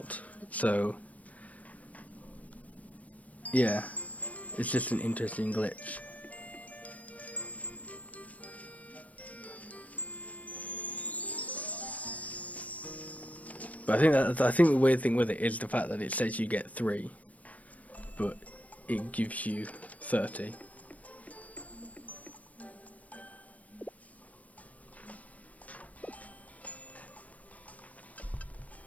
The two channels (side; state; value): right; late; 0.069 ms